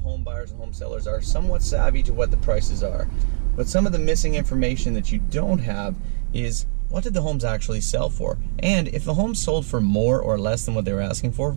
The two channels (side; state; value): left; silent; digital silence